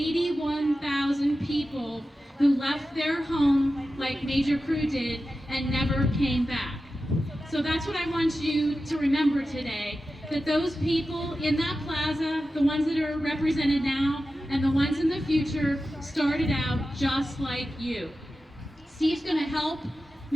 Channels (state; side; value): normal; both; correlation 0.93